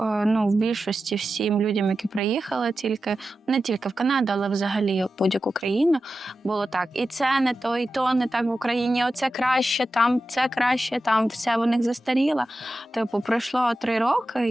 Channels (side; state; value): both; normal; correlation 0.92